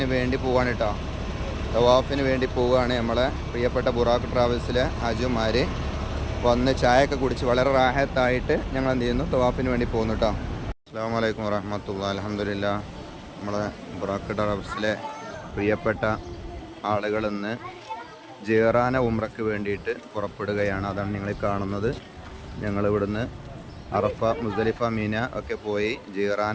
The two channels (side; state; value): both; identical; correlation 1.00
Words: വേണ്ടി പോവാണ് കേട്ടോ. തവാഫിന് വേണ്ടി പോവുകയാണ്. നമ്മളെ പ്രിയപ്പെട്ട ബുറാഖ് ട്രാവൽസിലെ ഹാജിമാർ വന്ന് ചായയൊക്കെ കുടിച്ച് വളരെ റാഹത്തായിട്ട് ഞങ്ങൾ എന്ത് ചെയ്യുന്നു, തവാഫിന് വേണ്ടി പോകുന്നു കേട്ടോ. അസ്സലാമു അലൈക്കും വറഹ്മത്തുള്ളാഹി. അൽഹംദുലില്ലാഹ്. നമ്മളെ ബുറാഖ് ട്രാവൽസിലെ പ്രിയപ്പെട്ട ആളുകൾ ഇന്ന് ജിറാന ഉംറയ്ക്ക് വേണ്ടിയിട്ട് പുറപ്പെടുകയാണ്. അതാണ് നിങ്ങൾ കാണുന്നത്. ഞങ്ങളിവിടുന്ന് അറഫ, മുസ്ദലിഫ, മീന ഒക്കെ പോയി ജിറാന